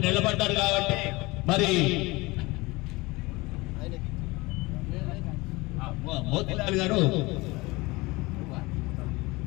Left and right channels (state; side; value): quieter; right; 22.9 dB